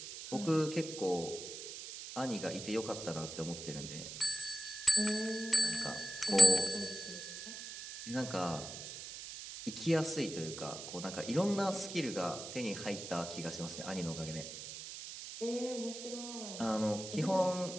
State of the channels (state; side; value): noise; right; hiss, 10 dB below the sound